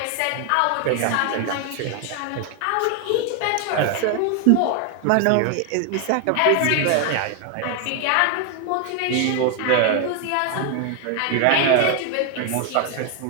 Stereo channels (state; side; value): different; both; correlation 0.01